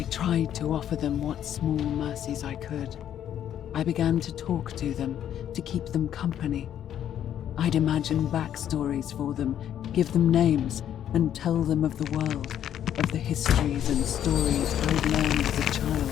tried to offer them what small mercies I could. I began to talk to them, to keep them company. I'd imagine backstories for them, give them names, and tell them of the world, of the histories and stories I'd learned as a child.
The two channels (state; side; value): quieter; right; 10.3 dB